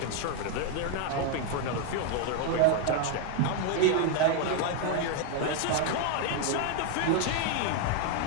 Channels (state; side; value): different; both; correlation 0.01